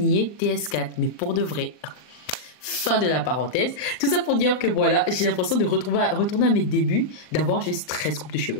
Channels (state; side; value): late; right; 39 ms